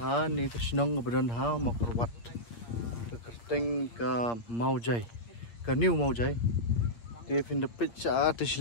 ni tersenang berdan ha makurwat. Kerteng ke Maujai. Ke New Maujai. De pindepit saat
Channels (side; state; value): right; late; 8.5 ms